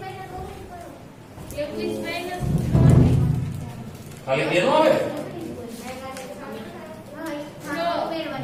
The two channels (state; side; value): identical; both; correlation 1.00